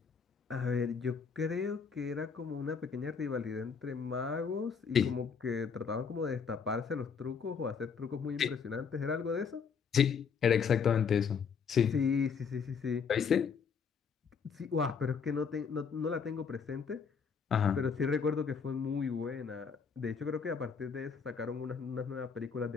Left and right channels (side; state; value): right; quieter; 6.1 dB